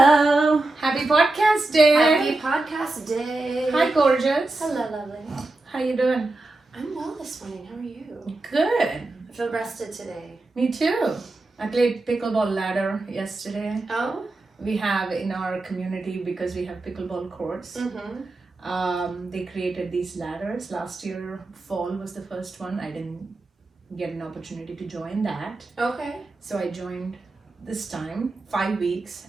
Happy podcast day. Happy podcast day. Hi, gorgeous. Hello, lovely. How you doing? I'm well this morning. How are you? Good. I feel rested today. Me too. I played pickleball ladder yesterday. Oh? We have in our community, because we have pickleball courts, they created these ladders. Last year, fall was the first one. I didn't get an opportunity to join that. Okay. So I joined this time, 5 weeks,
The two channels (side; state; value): left; quieter; 3.1 dB